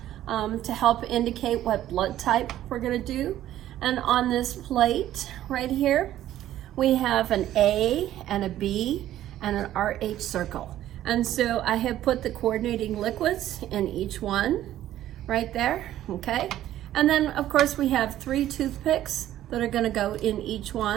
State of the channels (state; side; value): quieter; left; 12.9 dB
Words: to help indicate what blood type we're going to do. And on this plate right here, we have an A and a B and an RH circle. And so I have put the coordinating liquids in each one right there, okay? And then of course we have 3 toothpicks that are gonna go in each